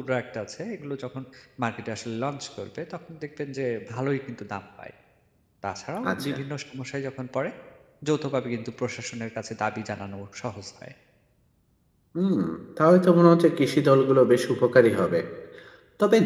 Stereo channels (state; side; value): identical; both; correlation 1.00